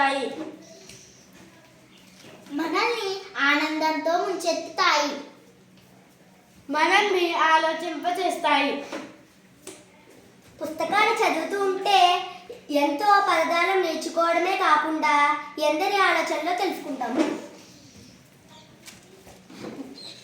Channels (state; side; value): identical; both; correlation 1.00